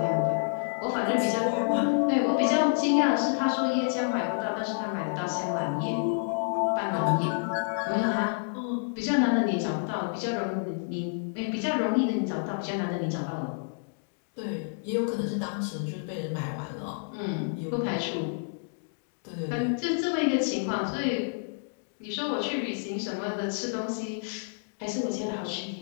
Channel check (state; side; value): silent; right; digital silence